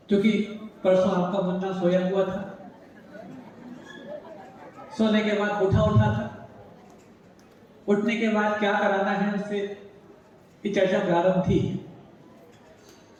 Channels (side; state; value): both; identical; correlation 1.00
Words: क्योंकि परसों आपका मुन्ना सोया हुआ था, सोने के बाद उठा था, उठने के बाद क्या कराना है उससे ये चर्चा प्रारंभ थी।